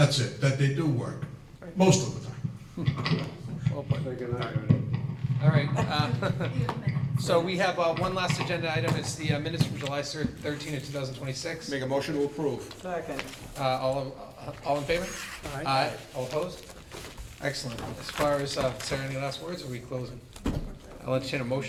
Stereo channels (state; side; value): identical; both; correlation 1.00